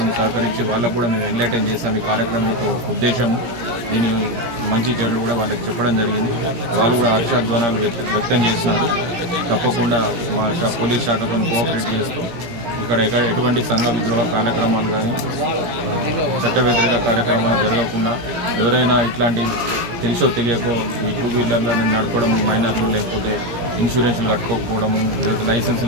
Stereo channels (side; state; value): left; late; 17 ms